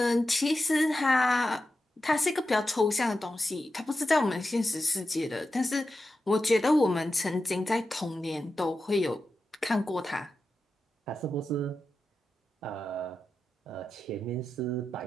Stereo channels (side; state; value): both; normal; correlation 0.90